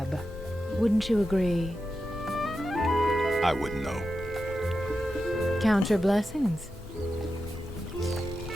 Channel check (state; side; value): normal; both; correlation 0.90